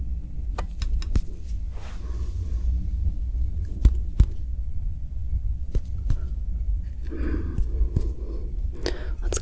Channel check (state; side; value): identical; both; correlation 1.00